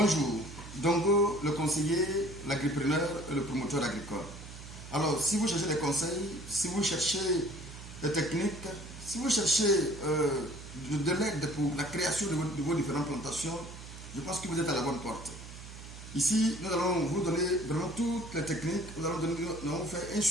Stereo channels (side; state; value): right; noise; hum, 14 dB below the sound